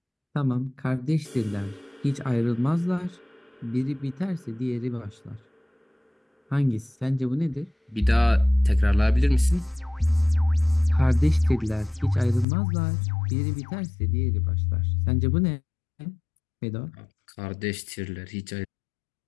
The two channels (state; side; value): drops out; right; at 12.5 s